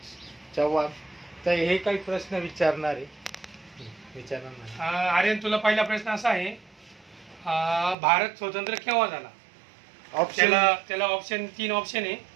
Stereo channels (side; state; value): left; drops out; at 8.0 s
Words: चव्हाण. तर हे काही प्रश्न विचारणार आहे. आर्यन, तुला पहिला प्रश्न असा आहे, भारत स्वतंत्र केव्हा झाला? त्याला ऑप्शन 3 ऑप्शन आहे.